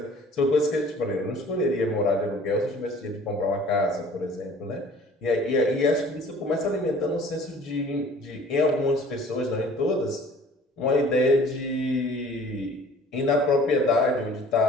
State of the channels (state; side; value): normal; both; correlation 0.50